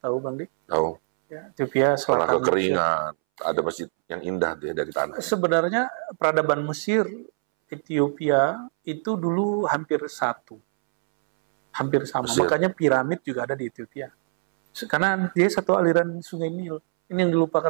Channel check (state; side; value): silent; left; 63 dB below the other